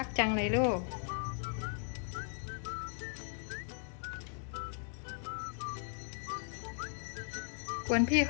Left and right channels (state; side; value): silent; right; 53 dB below the other